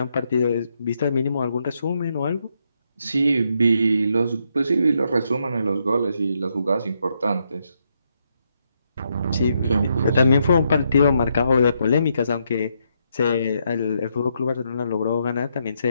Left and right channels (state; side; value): inverted; both; correlation -0.78